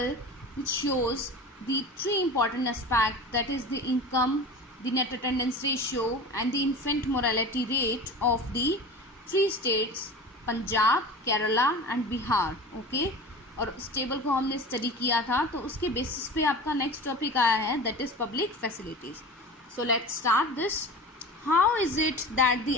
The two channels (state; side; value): normal; both; correlation 0.34